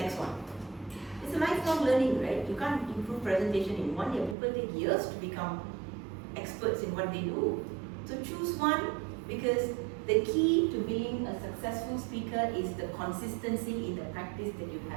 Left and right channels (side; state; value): left; drops out; at 4.4 s